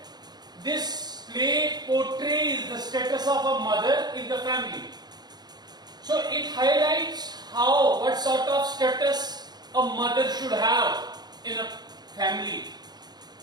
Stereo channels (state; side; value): late; left; 0.20 ms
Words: this play portrays the status of a mother in the family. So it highlights what sort of status a mother should have in a family.